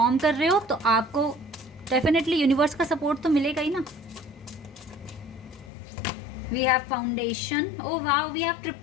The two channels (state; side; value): drops out; right; at 5.7 s